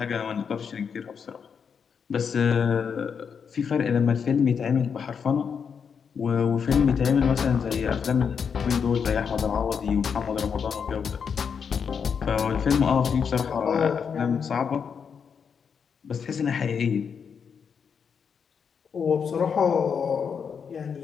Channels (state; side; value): quieter; right; 6.6 dB